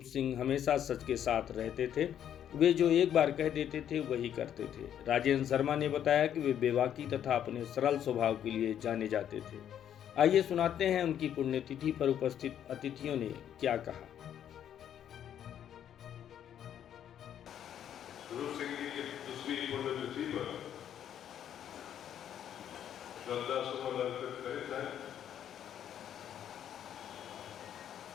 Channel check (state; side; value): quieter; right; 9.9 dB